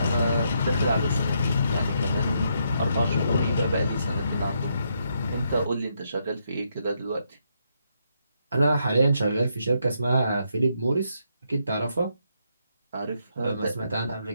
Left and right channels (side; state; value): both; inverted; correlation -0.77